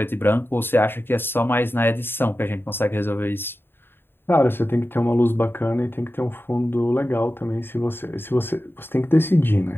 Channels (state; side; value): late; right; 0.10 ms